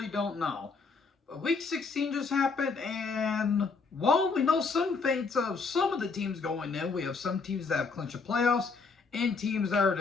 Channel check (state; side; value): quieter; right; 4.6 dB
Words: don't know. But Week 16 just happened, and while we know some fates of some of the teams going in, we have some teams that have clinched the playoffs, and teams that are